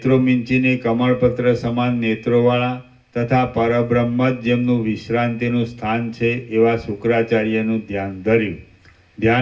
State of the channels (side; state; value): both; identical; correlation 1.00